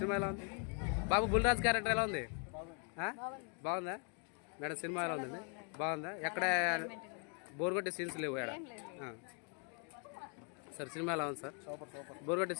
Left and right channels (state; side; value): quieter; right; 39.9 dB